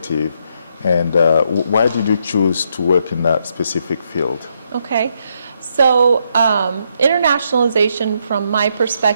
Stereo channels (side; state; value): both; inverted; correlation -0.77